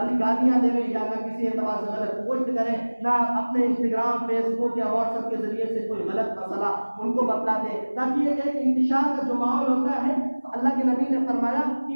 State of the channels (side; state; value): both; inverted; correlation -1.00